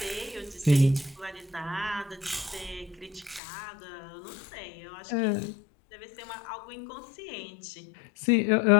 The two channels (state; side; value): drops out; right; at 3.4 s